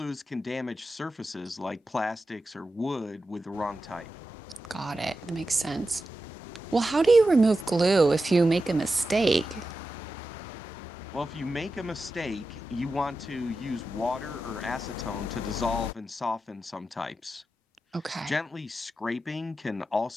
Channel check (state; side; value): normal; both; correlation 0.91